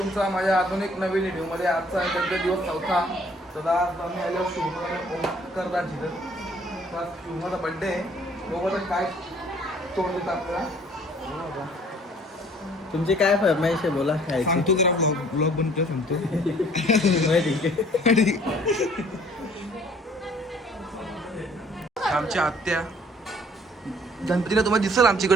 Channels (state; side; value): normal; both; correlation 0.57